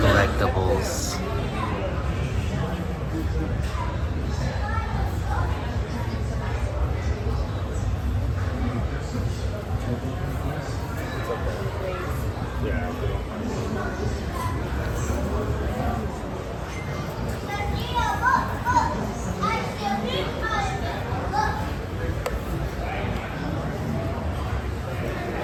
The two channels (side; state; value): both; identical; correlation 1.00